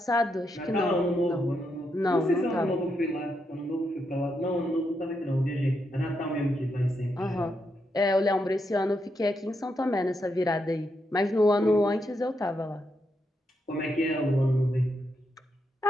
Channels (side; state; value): both; normal; correlation 0.82